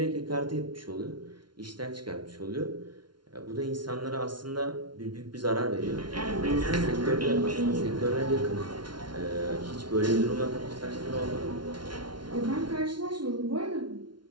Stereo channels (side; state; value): left; late; 0.72 ms